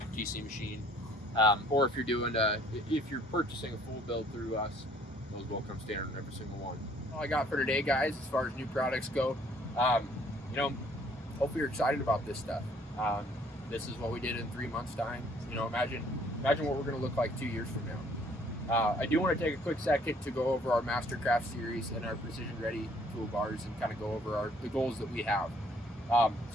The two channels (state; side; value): normal; both; correlation 0.60